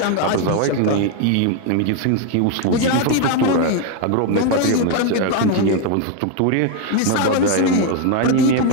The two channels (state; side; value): different; both; correlation 0.01